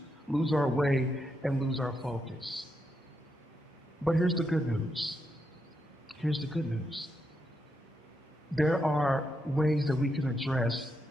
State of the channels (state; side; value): normal; both; correlation 0.82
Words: our way and lose our focus. But here's the good news. Here's the good news. There are ways that we can address